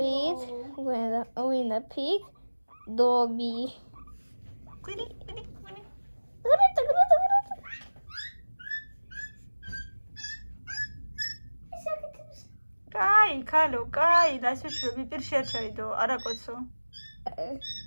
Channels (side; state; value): both; inverted; correlation -1.00